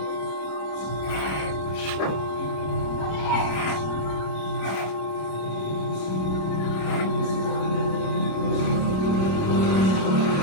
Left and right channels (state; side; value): late; right; 26 ms